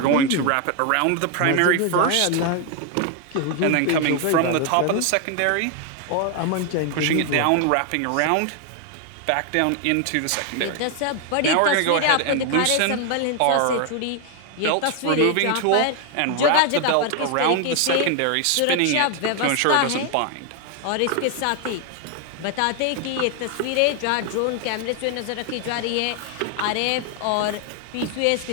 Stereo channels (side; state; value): both; different; correlation 0.01